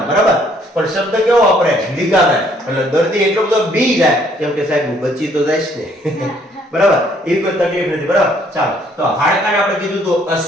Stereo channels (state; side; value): normal; both; correlation 0.64